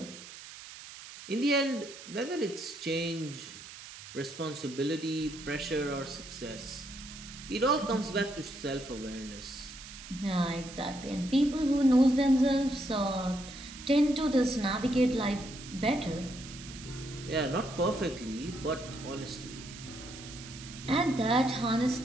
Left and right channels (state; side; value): noise; right; hiss, 14 dB below the sound